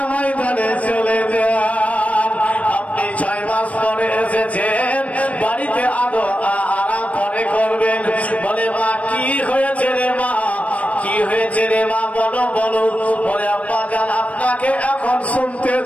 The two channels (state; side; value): late; right; 0.066 ms